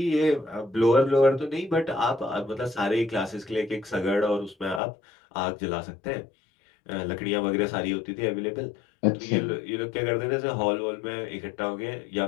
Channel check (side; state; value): right; drops out; at 4.8 s